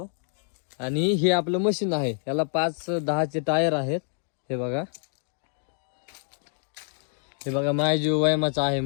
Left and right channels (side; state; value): right; silent; digital silence